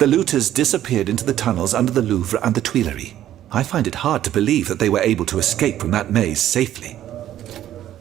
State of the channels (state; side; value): quieter; left; 12.1 dB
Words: looters disappeared into the tunnels under the Louvre and the Tuileries. I find it hard to believe that they were able to escape from that maze safely.